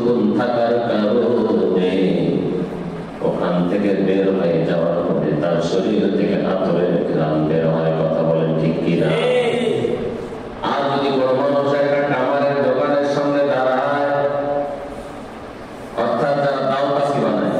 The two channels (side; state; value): both; identical; correlation 1.00